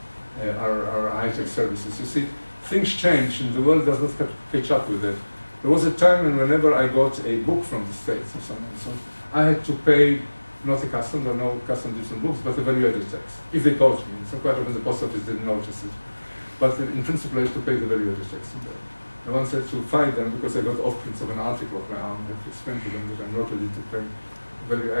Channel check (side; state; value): both; inverted; correlation -1.00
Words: are high-tech services. You see, things change, and the world does not catch up with it. There was a time when whenever I got a book from the States or something, so I had to pay not a custom, there are no custom duties on books, but a value-added tax, if they caught me. So quite often the post office didn't notice it. But in principle, I had to pay the value-added tax. I once had to fight them because I got off-prints of an article of my own. I had to explain to them that I'm not ready to pay value.